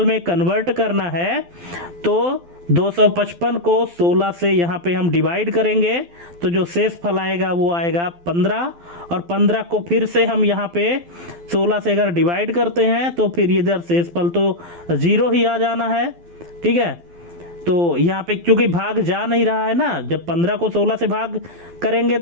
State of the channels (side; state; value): left; late; 12 ms